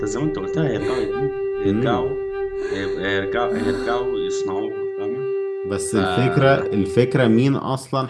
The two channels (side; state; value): both; identical; correlation 1.00